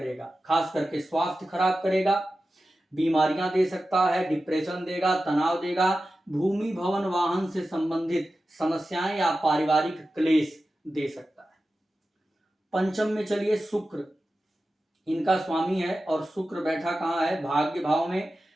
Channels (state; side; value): normal; both; correlation 0.93